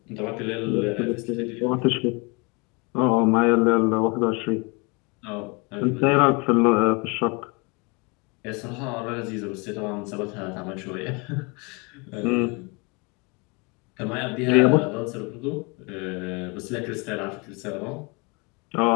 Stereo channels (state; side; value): quieter; right; 29.6 dB